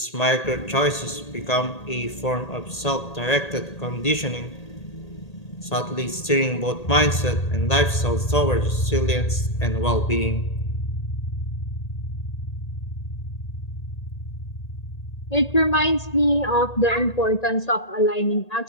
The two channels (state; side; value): late; right; 1.8 ms